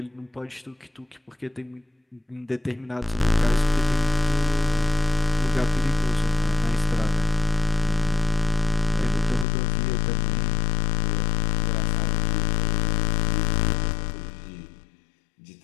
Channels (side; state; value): right; drops out; at 9.5 s